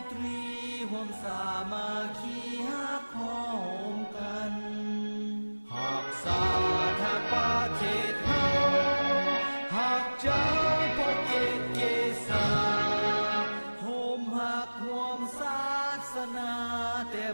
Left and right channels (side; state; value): both; inverted; correlation -1.00